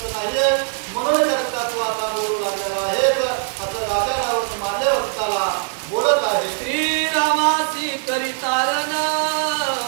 नाहीये म्हणून करता तू आता बोलू लागलेला आहे असं राजा रावण माल्यवंताला बोलत आहे. श्रीरामासी करितारण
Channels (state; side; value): silent; left; 65 dB below the other